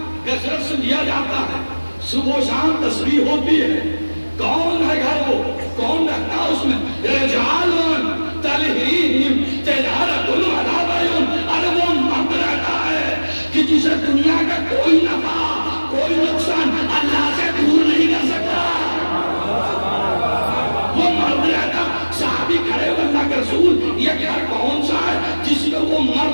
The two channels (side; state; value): both; inverted; correlation -1.00